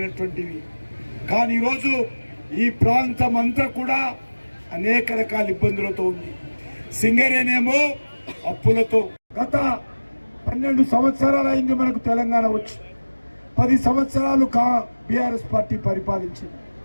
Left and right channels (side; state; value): both; inverted; correlation -1.00